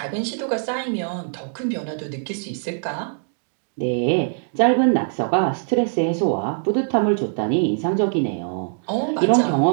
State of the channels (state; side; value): silent; left; digital silence